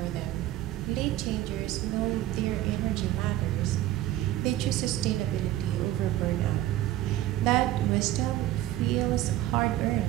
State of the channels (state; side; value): quieter; left; 14.4 dB